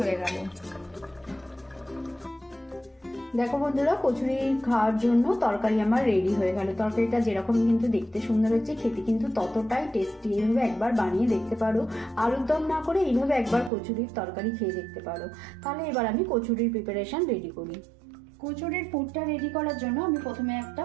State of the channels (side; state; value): left; drops out; at 13.7 s